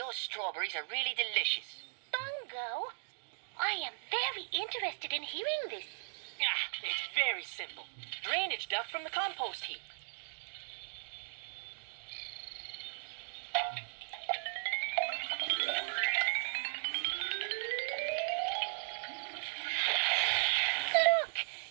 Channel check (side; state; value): left; silent; digital silence